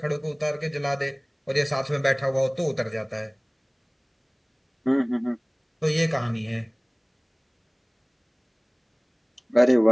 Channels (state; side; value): identical; both; correlation 1.00